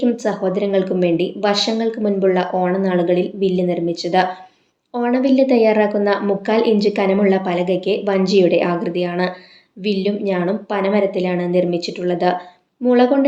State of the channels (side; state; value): both; identical; correlation 1.00